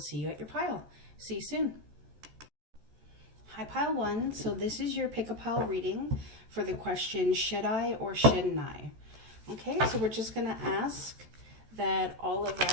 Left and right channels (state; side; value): late; left; 14 ms